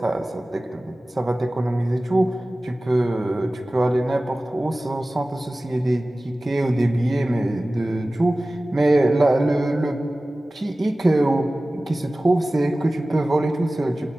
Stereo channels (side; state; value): both; normal; correlation 0.97